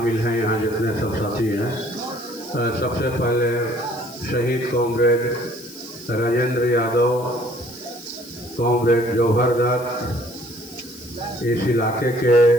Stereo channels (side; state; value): left; noise; hiss, 19 dB below the sound